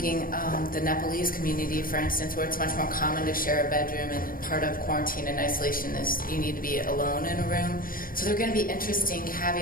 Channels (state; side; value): late; right; 0.41 ms